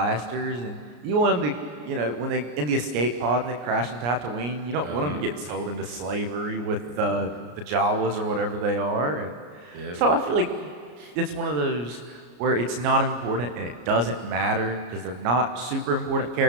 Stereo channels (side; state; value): left; late; 33 ms